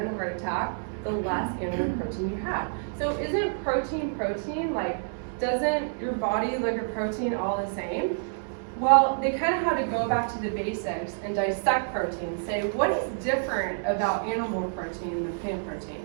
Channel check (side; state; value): left; silent; digital silence